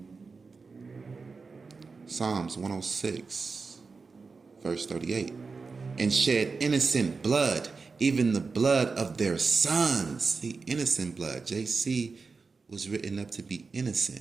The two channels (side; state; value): left; quieter; 4.5 dB